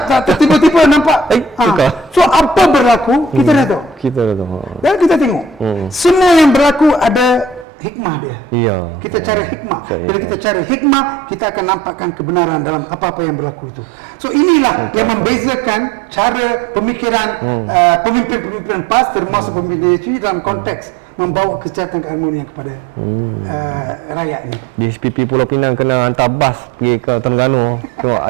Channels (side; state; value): left; drops out; at 7.7 s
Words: tiba-tiba nampak. So apa berlaku, kita redha. Dan kita tengok. Semua yang berlaku ada hikmah dia. Kita cari hikmah. Bila kita cari hikmah, kita akan nampakkan kebenaran dalam apa-apa yang berlaku itu. So inilah yang membezakan cara pemikiran pemimpin-pemimpin PAS, termasuk pemimpin DHP, dalam konteks membawa kesejahteraan keharmonian kepada rakyat ini. Di SPP Pulau Pinang kena hantar bas pergi ke Terengganu. Tengok